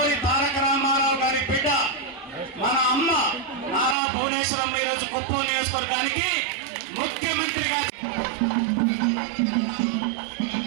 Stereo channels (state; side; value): drops out; left; at 4.0 s